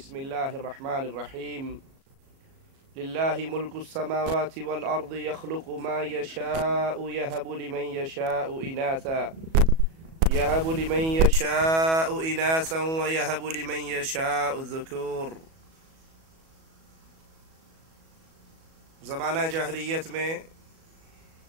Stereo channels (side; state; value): left; late; 37 ms